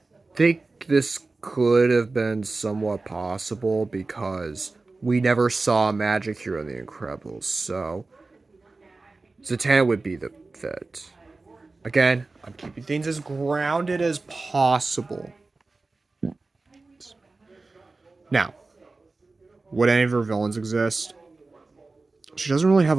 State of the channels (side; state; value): left; quieter; 3.6 dB